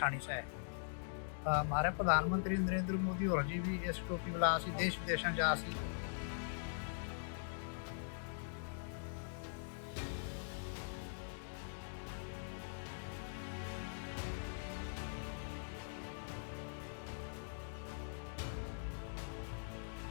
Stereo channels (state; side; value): silent; right; digital silence